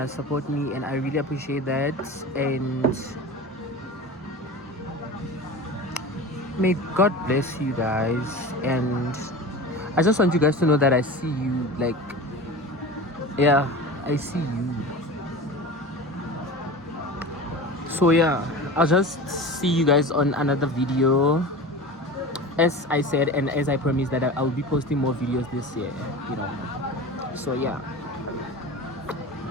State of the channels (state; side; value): normal; both; correlation 0.32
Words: support me, and I really appreciate that. And May God bless you guys, and I just want you guys to know that I see you. Like, yeah, I see you. So yeah, I'll just see you guys on another video. As I said, and as I promised, that I'll be posting more videos this year, you know. So yeah.